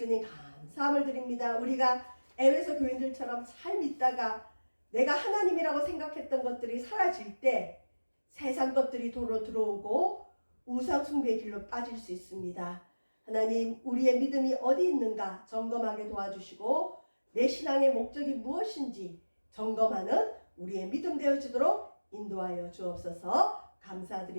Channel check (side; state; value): both; inverted; correlation -1.00